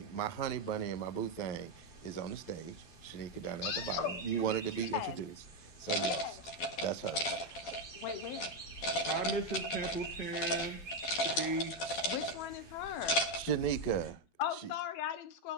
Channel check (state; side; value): late; right; 12 ms